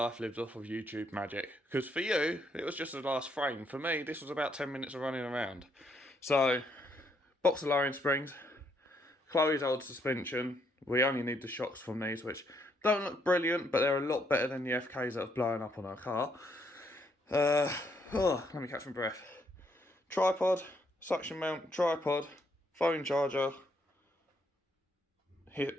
lived off of YouTube magic, because for you, it was just the last frame. For me, this was about 10 minutes of running around. So, box of lowering springs, Chloe's old suspension. We only need the shocks from these, which don't look brilliant, but they're a lot better than the FKs that have blown up on our car. Let me catch my breath. Tripod, suction mount, tripod, phone charger,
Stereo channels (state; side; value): normal; both; correlation 0.73